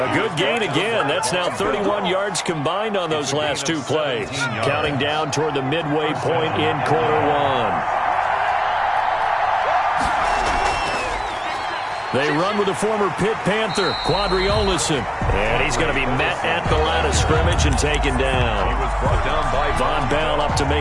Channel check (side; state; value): both; identical; correlation 1.00